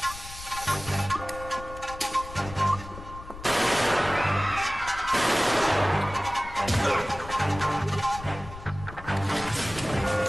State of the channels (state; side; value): noise; left; rumble, 14 dB below the sound